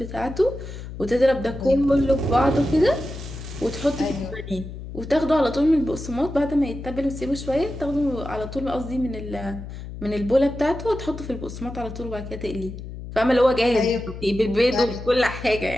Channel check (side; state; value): left; noise; hum, 10 dB below the sound